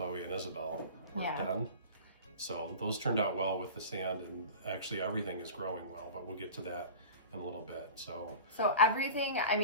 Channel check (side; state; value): both; inverted; correlation -0.35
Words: and Isabel were Yeah. done. So those turned out well with the sand, and actually everything is growing well, but we'll get to that in a little bit. So everything, I